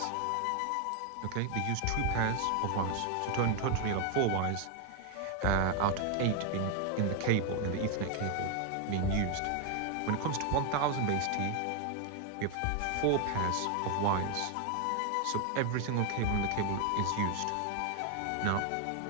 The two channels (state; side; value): different; both; correlation 0.01